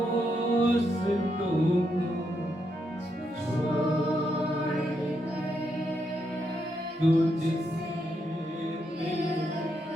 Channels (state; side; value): normal; both; correlation 0.80